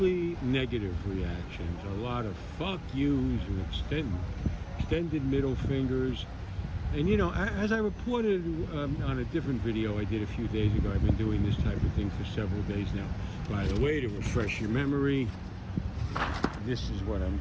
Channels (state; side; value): identical; both; correlation 1.00